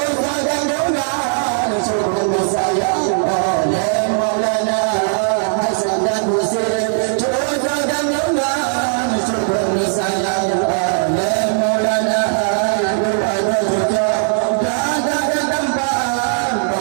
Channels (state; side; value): silent; left; digital silence